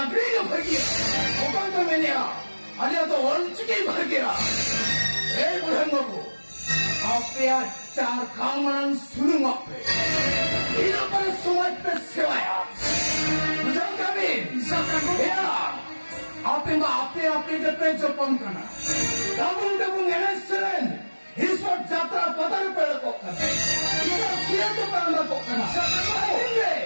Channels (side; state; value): both; inverted; correlation -1.00